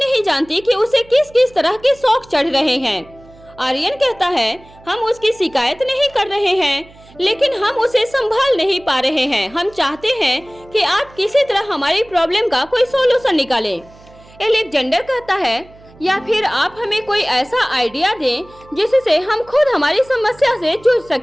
जानती कि उसे किस किस तरह के शौक चढ़ रहे हैं। आर्यन कहता है, हम उसकी शिकायत नहीं कर रहे हैं, लेकिन हम उसे संभाल नहीं पा रहे हैं। हम चाहते हैं कि आप किसी तरह हमारी प्रॉब्लम का कोई सॉल्यूशन निकालें। अलेक्जेंडर कहता है, या फिर आप हमें कोई ऐसा आइडिया दें जिससे हम खुद हमारी समस्या से जूझ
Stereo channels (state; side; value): noise; right; hum, 25 dB below the sound